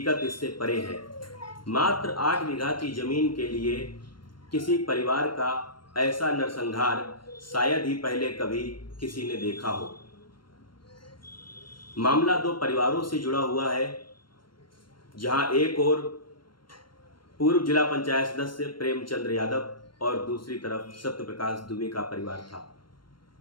इससे परे है। मात्र 8 बीघा की जमीन के लिए किसी परिवार का ऐसा नरसंहार शायद ही पहले कभी किसी ने देखा हो। मामला 2 परिवारों से जुड़ा हुआ है, जहां एक ओर पूर्व जिला पंचायत सदस्य प्रेमचंद्र यादव और दूसरी तरफ सत्यप्रकाश दुबे का परिवार था।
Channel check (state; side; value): late; right; 0.72 ms